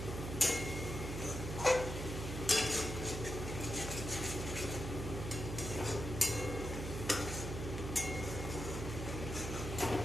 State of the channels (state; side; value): noise; right; hum, 5 dB below the sound